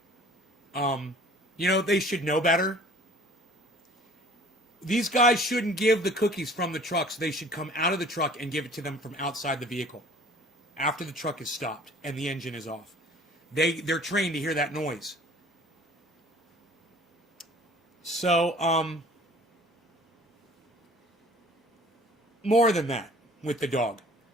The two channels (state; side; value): normal; both; correlation 0.50